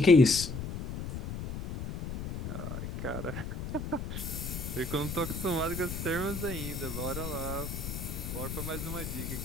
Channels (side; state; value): left; noise; rumble, 6 dB below the sound